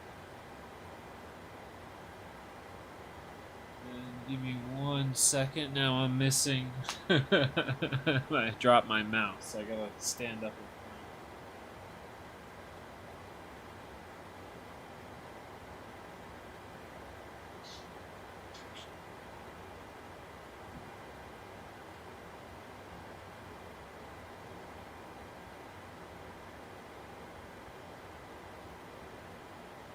And give me 1 second. Now I'm missing. I dropped my mouse. I gotta stand up and find it.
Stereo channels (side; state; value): both; identical; correlation 1.00